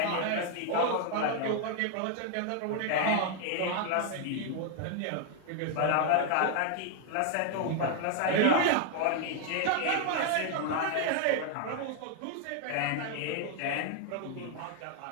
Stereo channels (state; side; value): different; both; correlation 0.00